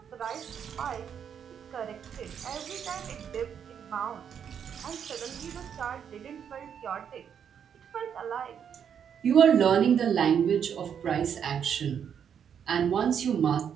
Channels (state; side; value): quieter; left; 8.0 dB